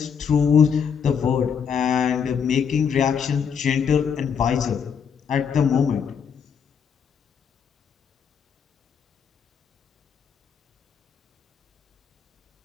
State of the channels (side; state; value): right; quieter; 7.0 dB